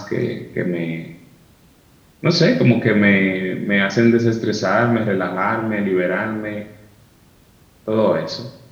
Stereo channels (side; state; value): both; identical; correlation 1.00